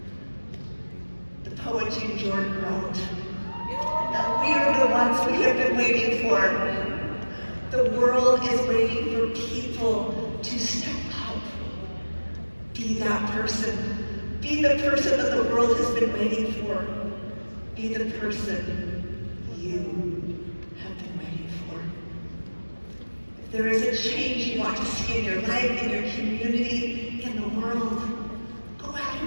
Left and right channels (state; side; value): inverted; both; correlation -1.00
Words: The poet Jean Jordan wrote, "Now we are the ones we have been waiting for. The world is waiting for people to step up. Be that person. Be the person that the world has been waiting for. Be the person you have been waiting for. If there is a change you want to see in your life, in your community, in the world, go out